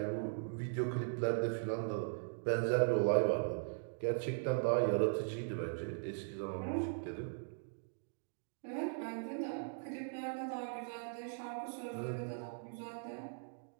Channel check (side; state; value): left; silent; digital silence